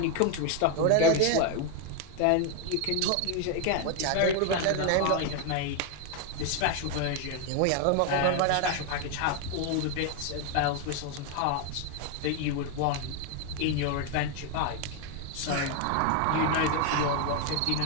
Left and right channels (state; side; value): different; both; correlation 0.01